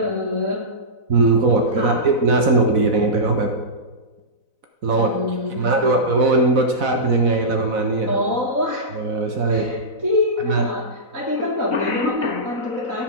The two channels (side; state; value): left; late; 4.0 ms